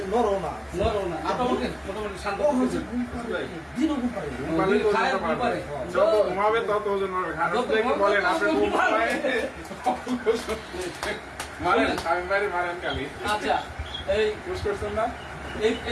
নরম না। নরম না। মোটামুটি শান্ত হচ্ছে। দিনও ঘুম পারে। খায় ঘুম পারে। যত ঘুমাবে তত ওজন হবে। খারাপ দেখে বলেন আপনি ঘুম পায়। মারেন, আমি বাড়ি মারেন খালি। আচ্ছা, এই পুশ করছেন না?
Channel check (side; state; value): both; identical; correlation 1.00